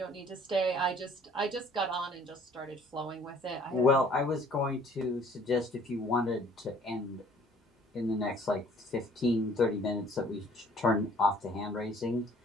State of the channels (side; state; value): both; normal; correlation 0.56